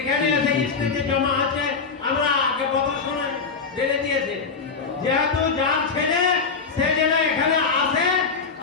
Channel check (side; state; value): right; quieter; 5.1 dB